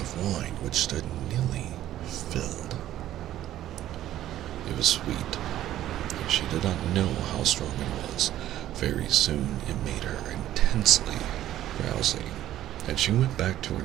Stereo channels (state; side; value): quieter; left; 12.9 dB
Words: wine which stood nearly filled. It was sweet, and she did not know how strong it was. Very soon it made her intensely drowsy, and she went back to her